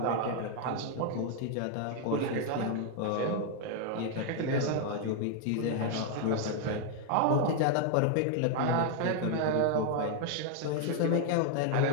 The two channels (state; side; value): different; both; correlation 0.00